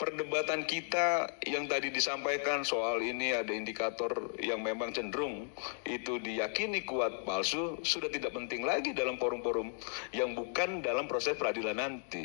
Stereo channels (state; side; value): silent; right; digital silence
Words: perdebatan kita yang tadi disampaikan soal ini ada indikator yang memang cenderung itu diyakini kuat palsu, sudah tidak penting lagi dalam forum-forum yang bukan dalam proses peradilan